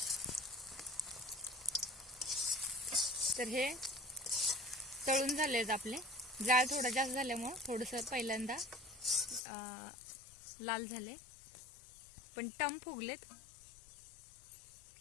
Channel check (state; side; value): drops out; right; at 9.4 s